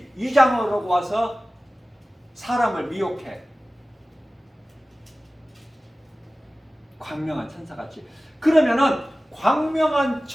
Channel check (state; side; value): normal; both; correlation 0.97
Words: 위장을 하고 와서 사람을 미혹해. 광명한 천사같이. 그러면은 광명한